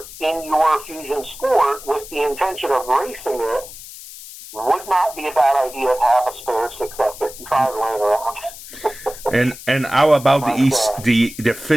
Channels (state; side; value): noise; left; hiss, 15 dB below the sound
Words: in your Fusion Sport with the intention of racing it, would not be a bad idea to have a spare 6F55 laying around. And how about the